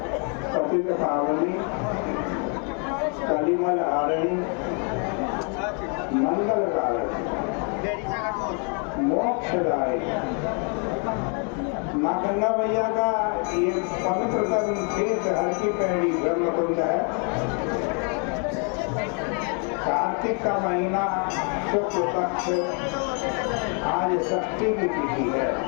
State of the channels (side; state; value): right; quieter; 39.0 dB